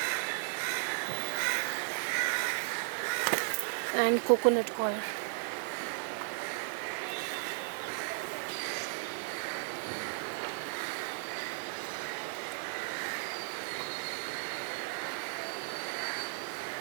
And coconut coir.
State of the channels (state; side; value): silent; left; 54 dB below the other